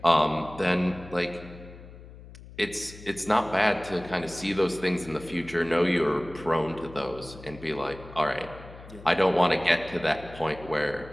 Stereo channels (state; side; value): noise; left; hum, 17 dB below the sound